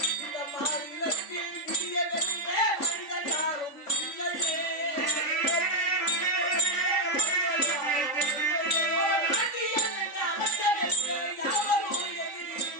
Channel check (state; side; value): late; right; 3.5 ms